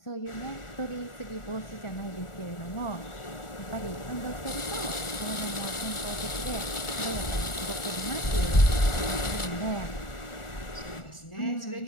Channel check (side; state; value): right; late; 1.4 ms